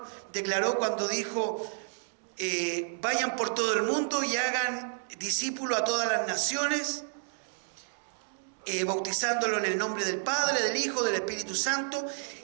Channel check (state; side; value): silent; left; digital silence